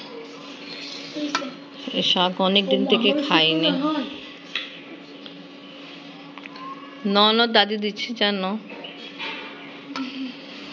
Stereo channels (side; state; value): both; identical; correlation 1.00